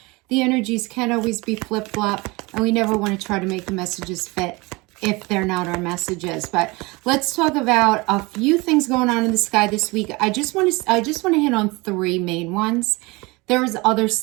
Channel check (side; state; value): left; quieter; 24.5 dB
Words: The energies can always be flip-flop, and we never want to try to make the messages fit if they're not our messages. But let's talk about a few things going on in the sky this week. I just want to hit on three main ones. There's other